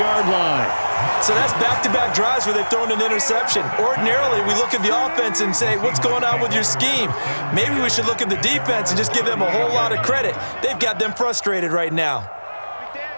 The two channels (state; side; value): inverted; both; correlation -1.00